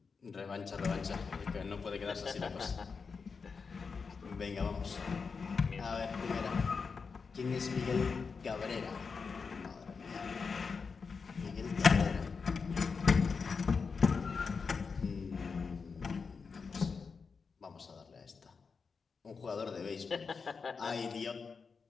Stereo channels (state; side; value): quieter; right; 5.2 dB